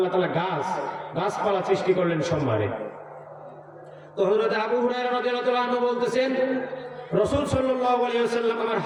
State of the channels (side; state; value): both; identical; correlation 1.00